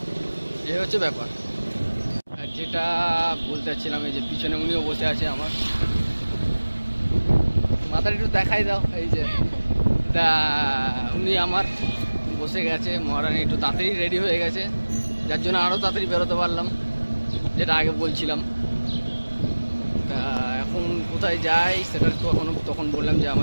এই হচ্ছে ব্যাপার। আর যেটা বলতে চাচ্ছিলাম, এই যে পিছনে উনিও বসে আছে আমার, মাথাটা একটু দেখাই দাও। এই যে তা উনি আমার বসে গেছে, মহারানী একটু তাড়াতাড়ি রেডি হয়ে গেছে, যার জন্য আরও তাড়াতাড়ি বেরোতে পারলাম, যেটা আগে বলছিলাম। তা এখন কোথায় যাই সেটা তো তখন বললাম যে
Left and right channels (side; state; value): both; inverted; correlation -1.00